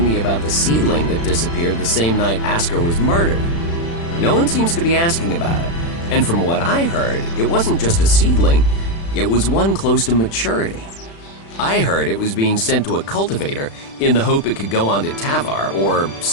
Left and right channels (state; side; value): late; right; 36 ms